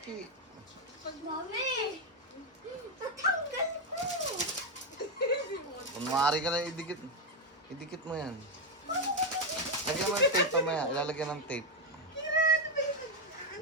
Mami! Natanggal ko! Kunwari ka lang, idikit. Idikit mo yan. Lagyan mo ng tape pamaya. Ilalagyan ng tape.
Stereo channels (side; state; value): both; normal; correlation 0.04